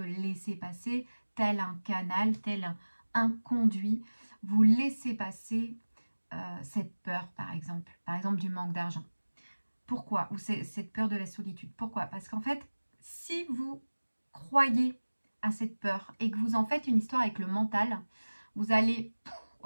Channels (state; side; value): inverted; both; correlation -1.00